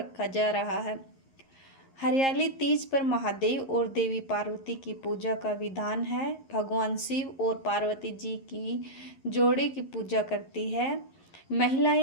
जा रहा है। हरियाली तीज पर महादेव और देवी पार्वती की पूजा का विधान है। भगवान शिव और पार्वती जी की जोड़े की पूजा करती है।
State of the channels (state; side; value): late; right; 11 ms